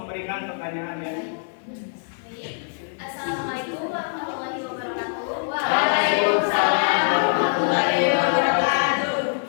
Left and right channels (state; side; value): silent; right; 63 dB below the other